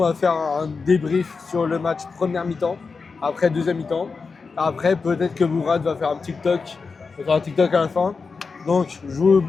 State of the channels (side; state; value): right; quieter; 4.7 dB